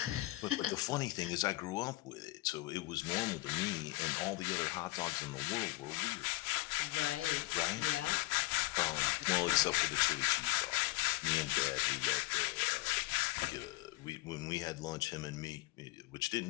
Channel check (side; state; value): right; quieter; 20.6 dB